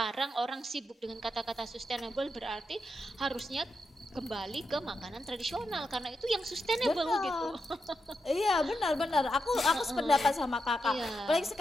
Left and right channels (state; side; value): normal; both; correlation 0.85